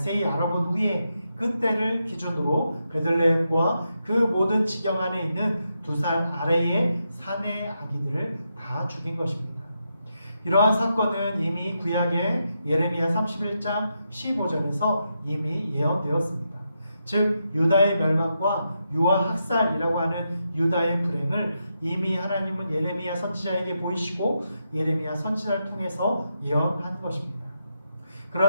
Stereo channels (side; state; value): both; inverted; correlation -0.84